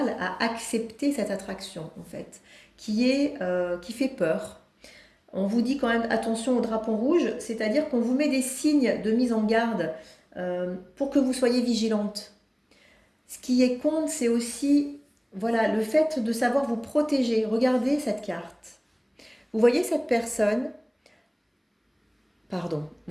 à accepter cette attraction, en fait, qui fait peur. On vous dit quand même attention au drapeau rouge, c'est-à-dire qu'on vous met des signes de mise en garde pour que vous soyez vigilante. Ce qui est compte, c'est aussi le fait de savoir vous protéger. Regardez cette carte. Vous voyez cette personne,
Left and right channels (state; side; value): identical; both; correlation 1.00